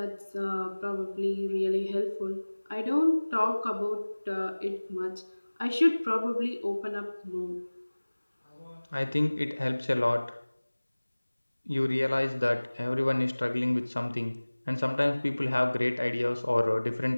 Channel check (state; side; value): inverted; both; correlation -1.00